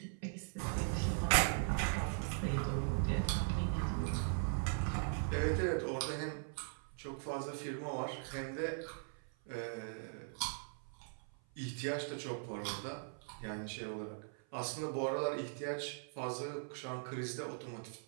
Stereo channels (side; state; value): left; silent; 51 dB below the other